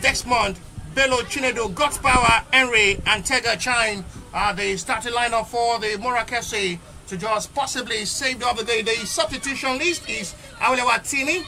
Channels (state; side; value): identical; both; correlation 1.00